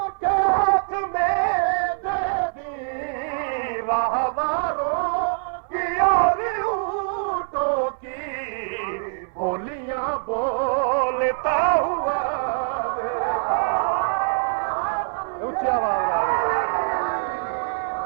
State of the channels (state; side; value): silent; left; digital silence